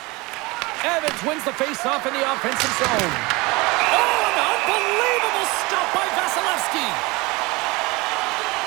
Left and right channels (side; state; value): left; quieter; 24.0 dB